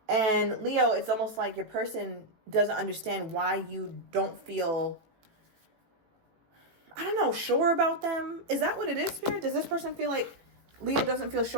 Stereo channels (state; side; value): late; left; 18 ms